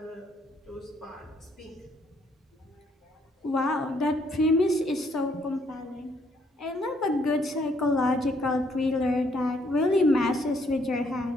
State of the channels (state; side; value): normal; both; correlation 0.69